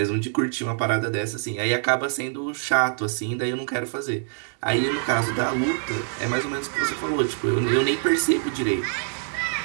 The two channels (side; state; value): left; silent; digital silence